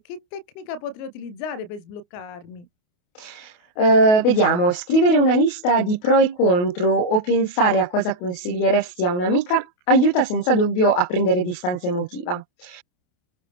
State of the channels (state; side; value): late; right; 28 ms